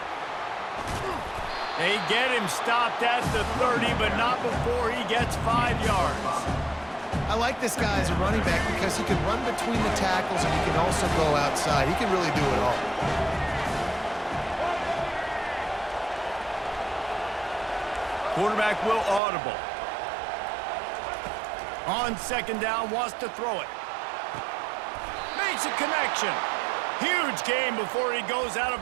They get him stopped at the 30, but not before he gets 5 yards. I like this guy as a running back because he can run between the tackles and he can also go outside. He can really do it all. Quarterback will audible. On second down, wants to throw it. Makes a connection. Huge gain before he goes out of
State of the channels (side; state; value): left; drops out; at 19.2 s